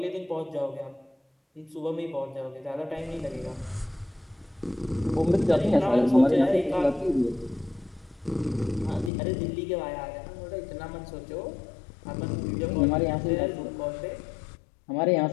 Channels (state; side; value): drops out; right; at 9.1 s